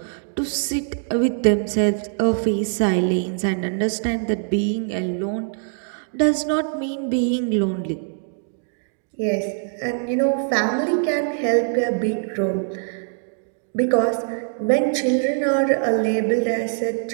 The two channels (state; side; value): silent; left; digital silence